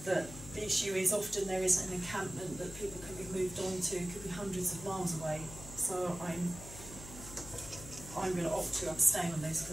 That the issue is often there isn't an encampment that people can be moved on to, could be hundreds of miles away. So I'm going to opt to abstain on this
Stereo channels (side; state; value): left; noise; hum, 13 dB below the sound